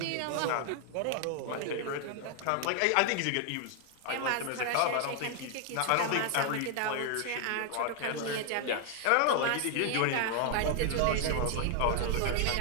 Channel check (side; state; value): both; different; correlation 0.00